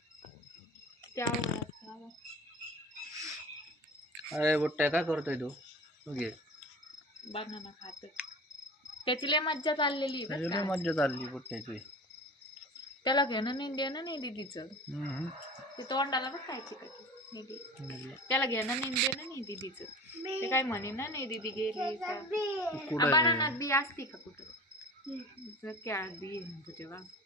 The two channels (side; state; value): both; normal; correlation 0.37